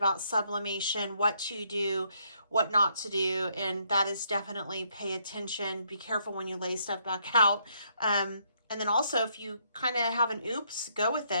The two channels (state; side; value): inverted; both; correlation -0.72